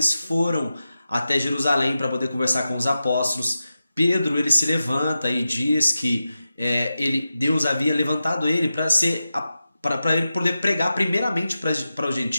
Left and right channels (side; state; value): both; inverted; correlation -0.92